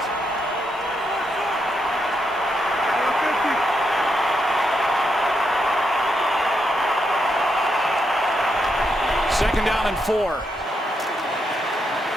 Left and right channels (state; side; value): normal; both; correlation 0.81